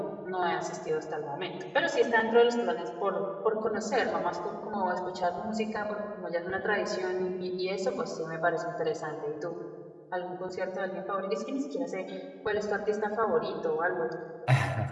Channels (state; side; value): identical; both; correlation 1.00